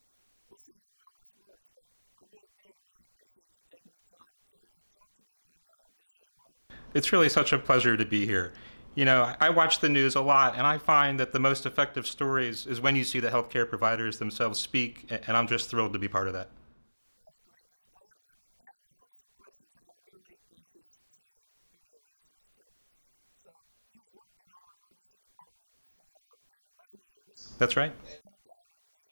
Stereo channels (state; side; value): inverted; both; correlation -1.00